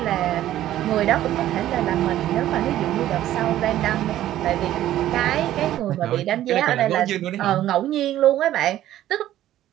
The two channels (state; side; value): quieter; left; 13.1 dB